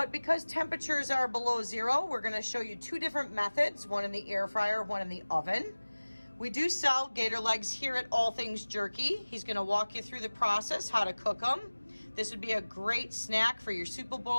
because temperatures are below zero, we're going to show you two different methods, one in the air fryer, one in the oven. We do sell gator legs here at All Things Jerky. He's going to walk you through the process, how to cook them. This would be a great snack for your Super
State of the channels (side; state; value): both; inverted; correlation -1.00